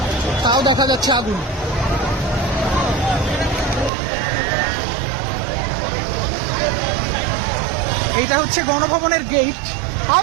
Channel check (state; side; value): drops out; left; at 3.9 s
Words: তাও দেখা যাচ্ছে আগুন। এইটা হচ্ছে গণভবনের গেট।